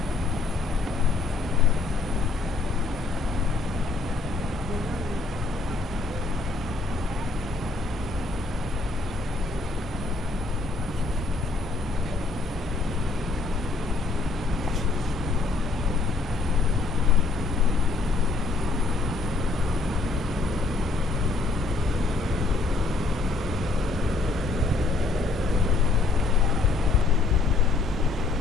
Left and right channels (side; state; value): right; quieter; 3.8 dB